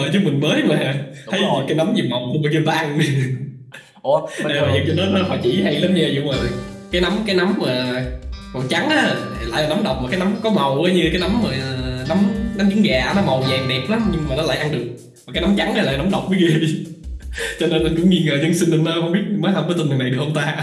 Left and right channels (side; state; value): both; identical; correlation 1.00